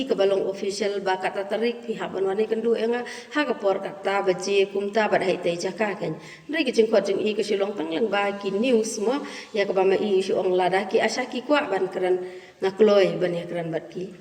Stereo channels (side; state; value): both; identical; correlation 1.00